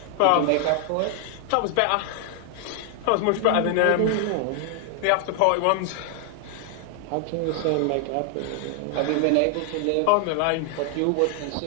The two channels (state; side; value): different; both; correlation 0.00